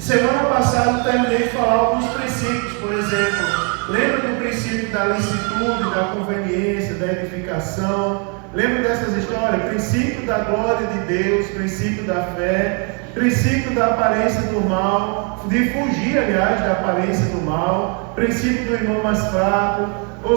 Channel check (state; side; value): quieter; left; 37.2 dB